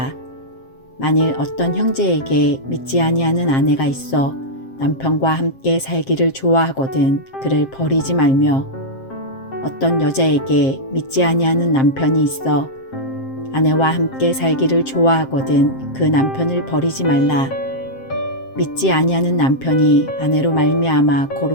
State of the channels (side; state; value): right; late; 7.6 ms